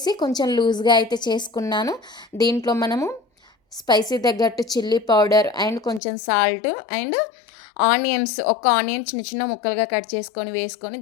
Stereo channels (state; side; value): drops out; right; at 6.0 s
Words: కొంచెం లూజ్‌గా అయితే చేసుకున్నాను. దీంట్లో మనము స్పైసీ తగ్గట్టు చిల్లీ పౌడర్ అండ్ కొంచెం సాల్ట్ అండ్ ఆనియన్స్, ఒక ఆనియన్ చిన్న చిన్న ముక్కలుగా కట్ చేసుకొని వేసుకొని